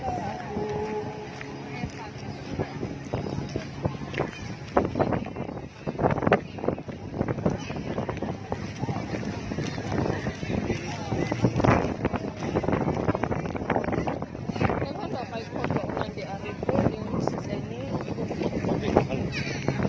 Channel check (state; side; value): identical; both; correlation 1.00